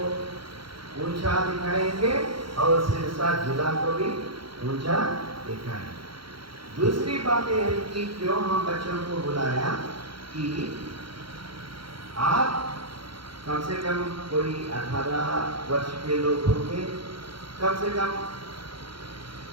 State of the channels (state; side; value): late; left; 0.73 ms